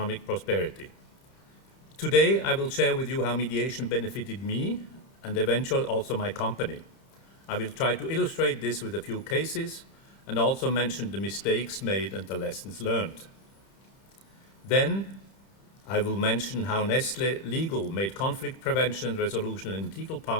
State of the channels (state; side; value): late; right; 30 ms